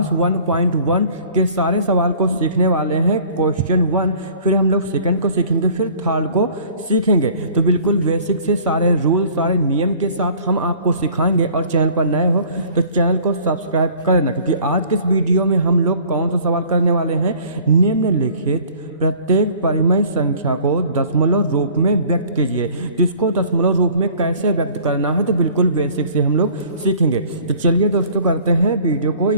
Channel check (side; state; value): both; inverted; correlation -0.51